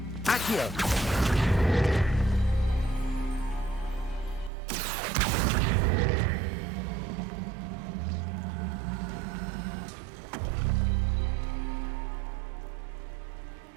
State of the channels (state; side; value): drops out; left; at 4.5 s